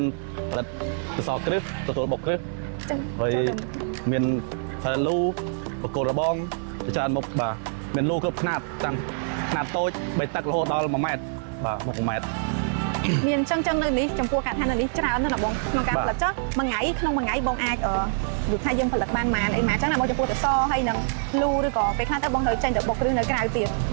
ផលិតកសគ្រឹះទទួលបុកគ្រឹះហើយមានផលិតលូបកគោរបងច្រើនមុខបាទមានលូគ្រប់ຂະຫນាតតាមຂະຫນាតតូច3តឹករហូតដល់1ម៉ែត្របាទ1ម៉ែត្រមានចឹងនៅនេះចំពោះការឋាននៅនេះច្រើនណាស់បងក្នុងការផលិតចុះមួយថ្ងៃបងអាចដូចថាយើងផលិតបានប៉ុន្មានអីម៉ាចឹងណាបងចំពោះតសហើយនឹងលូឬក៏ពេលខ្លះទៅបងត្រូវចេញទៅបុកគ្រឹះនៅក្រៅទៀត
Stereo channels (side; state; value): left; silent; 56 dB below the other